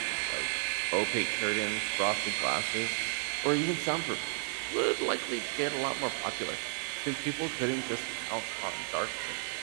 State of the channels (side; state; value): left; silent; 56 dB below the other